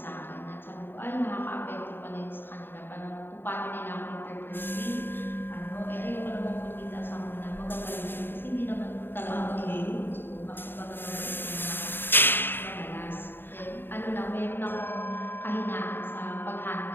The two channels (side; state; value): right; late; 0.099 ms